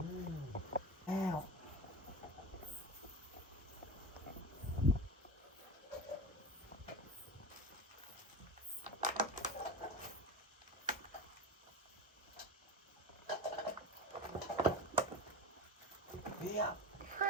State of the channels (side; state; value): both; normal; correlation 0.27